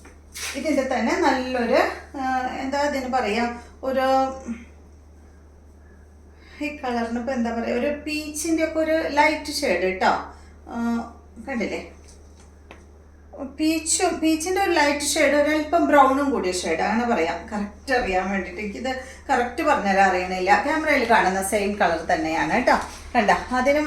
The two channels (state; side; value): identical; both; correlation 1.00